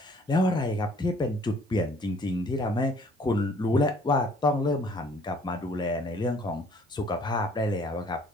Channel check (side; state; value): both; normal; correlation 0.58